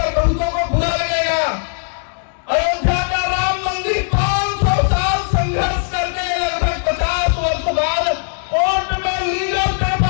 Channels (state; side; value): silent; right; digital silence